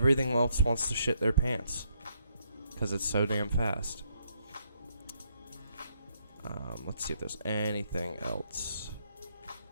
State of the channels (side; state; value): both; inverted; correlation -0.74